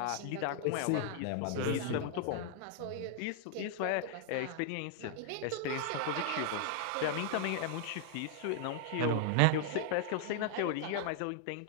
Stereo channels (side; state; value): both; different; correlation 0.00